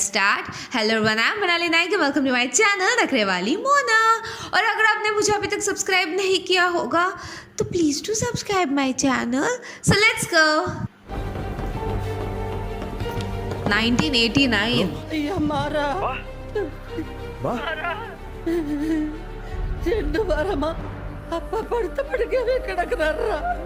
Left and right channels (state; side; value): identical; both; correlation 1.00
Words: hello everyone, I'm Manali Naik and welcome to my channel नखरे वाली मोना. और अगर आपने मुझे अभी तक subscribe नहीं किया होगा तो please do subscribe my channel. So let's go. 1989. हमारा చెండు వారమా అప్ప పడితే పడికే కిడకనర్రా.